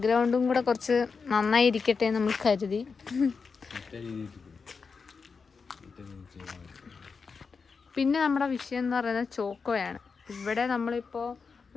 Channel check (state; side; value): quieter; right; 5.1 dB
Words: കൂടെ കുറച്ച് നന്നായി ഇരിക്കട്ടെ നമ്മൾ കരുതി. പിന്നെ നമ്മുടെ വിഷയം എന്ന് പറയുന്നത് ചോക്കോയാണ്. ഇവിടെ നമ്മളിപ്പോൾ